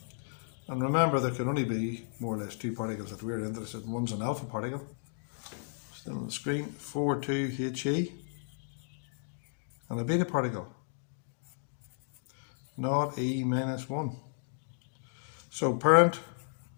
And remember, there can only be more or less 2 particles that we're interested in. One's an alpha particle, still on the screen, 42He, and a beta particle, 0E minus 1. So parent,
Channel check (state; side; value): silent; right; digital silence